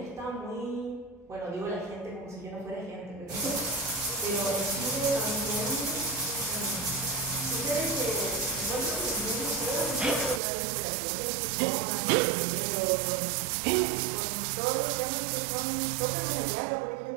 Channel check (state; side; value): drops out; left; at 10.4 s